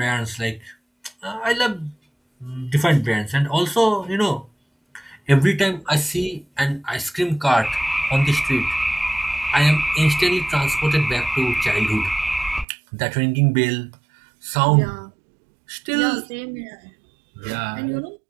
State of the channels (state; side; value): drops out; left; at 12.7 s